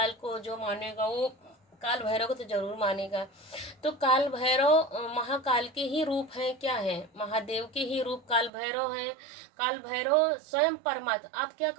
को जो मानेगा वो काल भैरव को तो जरूर मानेगा। तो काल भैरव महाकाल के ही रूप है, क्या है, महादेव के ही रूप काल भैरव है। काल भैरव स्वयं परमात्मा। आप क्या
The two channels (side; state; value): left; drops out; at 8.5 s